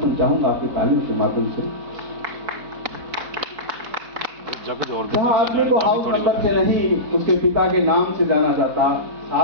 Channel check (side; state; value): left; late; 4.1 ms